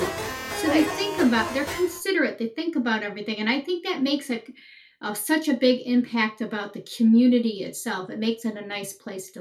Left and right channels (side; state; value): both; identical; correlation 1.00